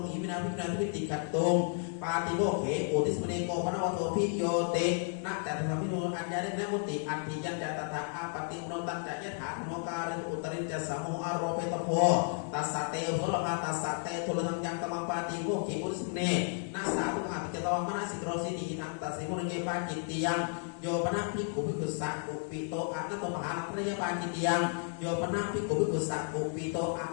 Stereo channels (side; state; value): right; silent; 56 dB below the other